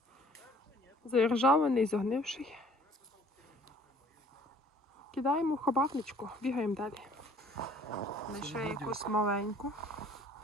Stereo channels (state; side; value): normal; both; correlation 0.56